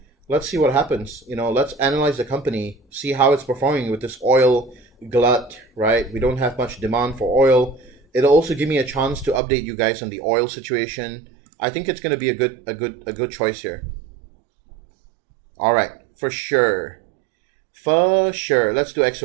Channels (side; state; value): left; drops out; at 9.4 s